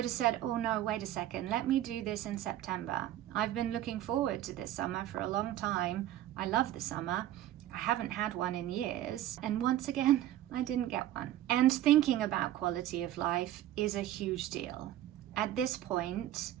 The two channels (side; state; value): left; quieter; 13.0 dB